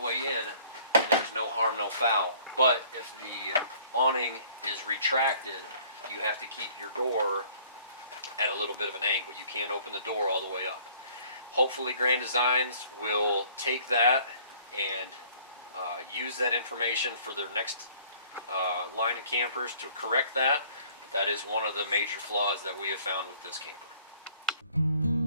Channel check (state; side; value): inverted; both; correlation -0.56